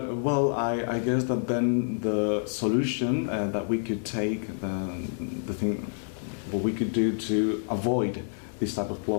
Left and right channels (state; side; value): silent; right; digital silence